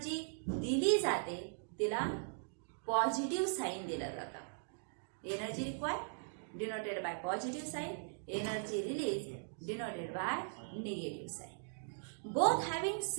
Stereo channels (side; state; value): left; silent; digital silence